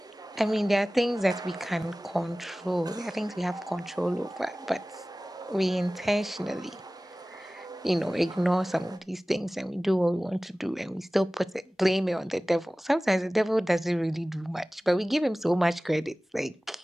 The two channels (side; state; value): both; normal; correlation 0.98